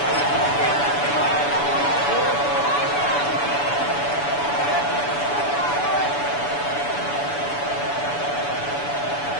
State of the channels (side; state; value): right; late; 7.0 ms